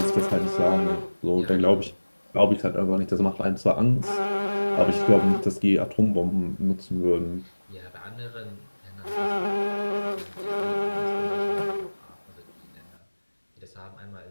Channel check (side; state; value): both; inverted; correlation -1.00